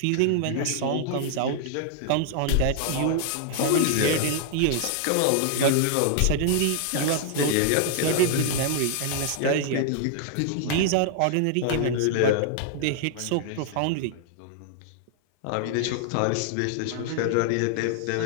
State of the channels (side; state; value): both; different; correlation 0.00